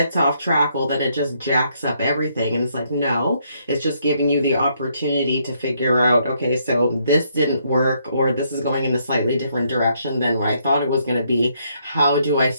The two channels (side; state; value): both; inverted; correlation -0.72